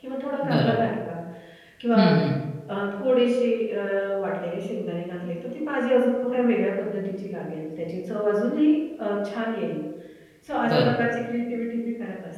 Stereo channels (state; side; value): identical; both; correlation 1.00